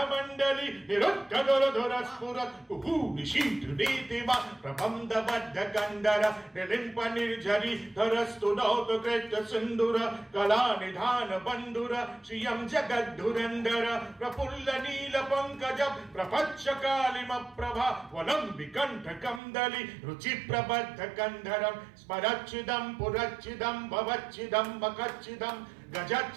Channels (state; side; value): drops out; left; at 19.4 s